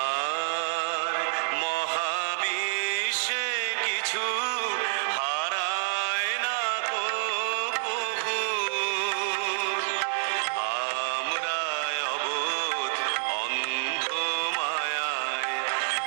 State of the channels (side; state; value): left; silent; digital silence